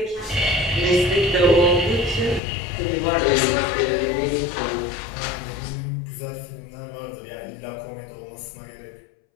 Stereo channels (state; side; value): drops out; right; at 2.4 s